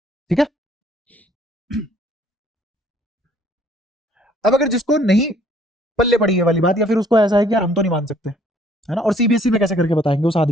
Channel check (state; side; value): normal; both; correlation 0.61